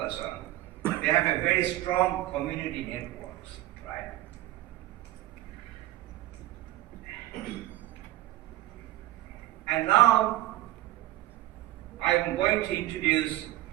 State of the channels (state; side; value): quieter; left; 15.8 dB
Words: on, they have a very strong community networks, right? And now I'm going to introduce